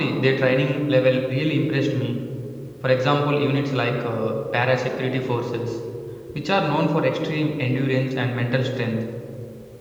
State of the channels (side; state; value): both; identical; correlation 1.00